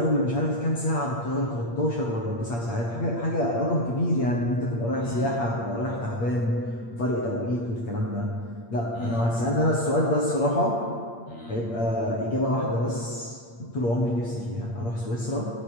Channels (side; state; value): right; late; 8.6 ms